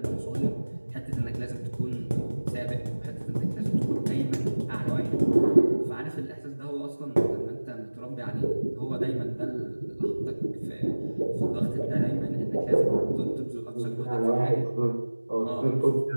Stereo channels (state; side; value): inverted; both; correlation -1.00